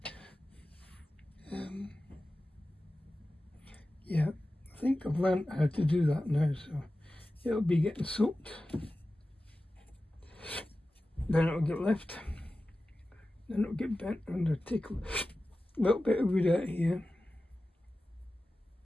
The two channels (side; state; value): both; normal; correlation 0.95